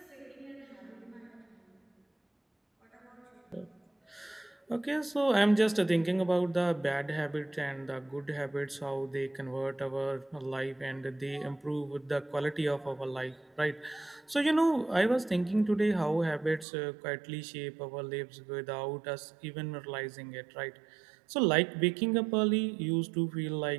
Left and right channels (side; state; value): left; drops out; at 16.7 s